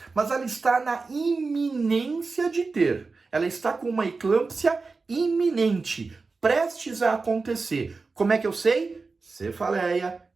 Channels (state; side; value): quieter; left; 4.1 dB